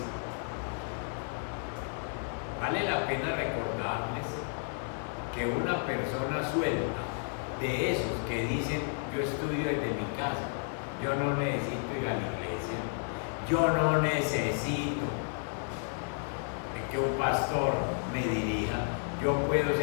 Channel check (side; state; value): right; silent; 56 dB below the other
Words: Vale la pena recordarles que una persona suelta, de esos que dicen: yo estudio desde mi casa, yo no necesito ir a la iglesia, yo no necesito que un pastor me dirija, yo puedo